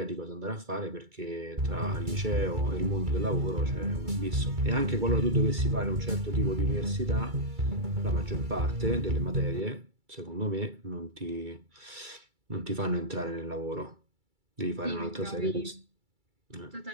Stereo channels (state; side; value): late; left; 2.3 ms